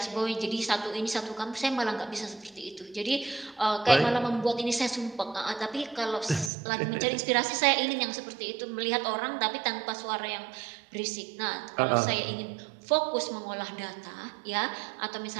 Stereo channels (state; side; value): drops out; left; at 6.5 s